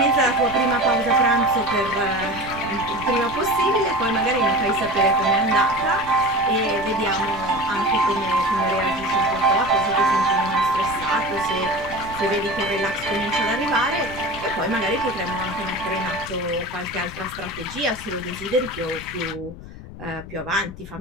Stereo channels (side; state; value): left; noise; rumble, 14 dB below the sound